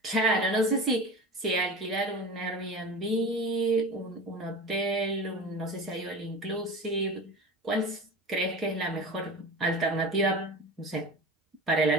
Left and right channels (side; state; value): both; normal; correlation 0.32